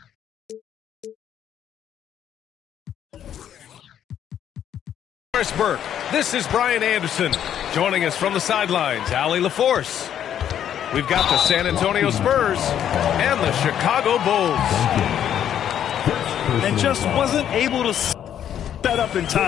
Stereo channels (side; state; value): right; quieter; 9.9 dB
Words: Burke. This is Brian Anderson. Joining us from the sidelines, Allie LaForce. We've got the San Antonio Spurs and the Chicago Bulls. And just wasn't able to set up in